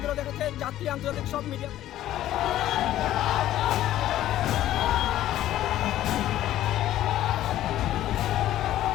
দেখেছে, জাতীয় আন্তর্জাতিক সব মিডিয়া।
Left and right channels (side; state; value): right; quieter; 13.3 dB